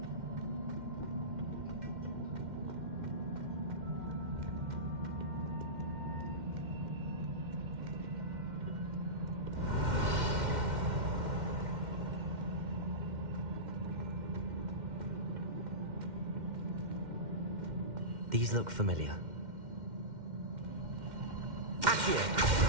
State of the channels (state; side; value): late; left; 2.1 ms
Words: These look familiar. Accio.